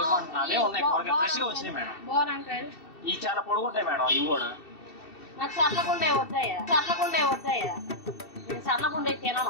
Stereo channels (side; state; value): right; late; 2.7 ms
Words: అంటున్నావే. ఉన్నాయి కూరగాయలు ఫ్రెష్ గా వచ్చినాయి మేడం. బాగుంటాడు. ఈ చాలా పొడుగుంటాయి మేడం. ఇవి కూడా నాకు సన్నగుండే వద్దాయా? నేను సన్నగుండే